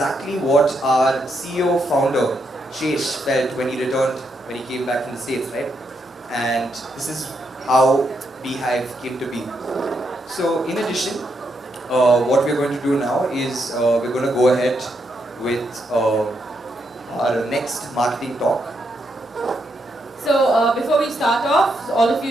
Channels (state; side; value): normal; both; correlation 0.80